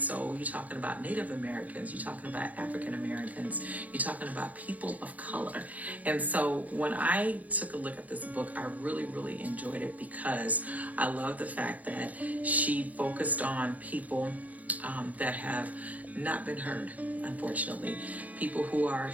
So you're talking about Native Americans, you're talking about African Americans, you're talking about people of color. And so when I took a look at this book, I really, really enjoyed it because I love the fact that she focused on people that have not been heard, unfortunately. People who are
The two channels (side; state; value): left; late; 0.076 ms